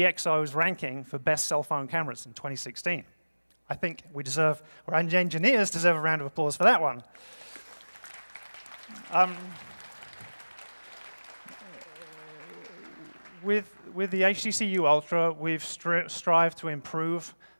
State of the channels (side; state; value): both; inverted; correlation -1.00